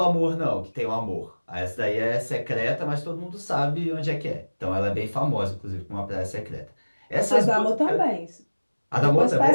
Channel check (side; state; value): both; inverted; correlation -1.00